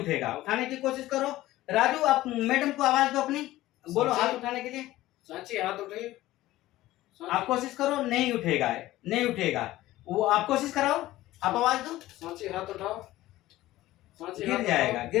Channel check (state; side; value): quieter; right; 16.2 dB